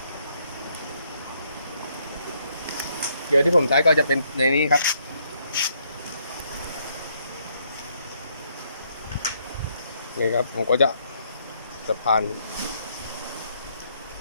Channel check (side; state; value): both; inverted; correlation -0.72